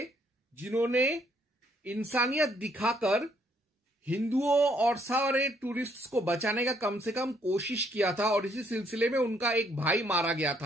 जिन्होंने इंसानियत दिखाकर हिंदुओं और सारे टूरिस्ट्स को बचाने का कम से कम कोशिश किया था। और इसी सिलसिले में उनका एक भाई मारा गया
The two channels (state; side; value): normal; both; correlation 0.69